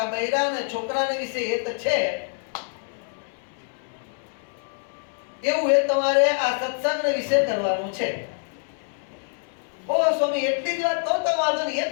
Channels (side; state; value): right; silent; 61 dB below the other